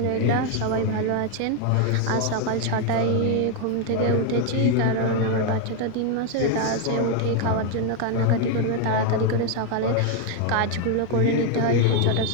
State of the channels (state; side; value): different; both; correlation 0.01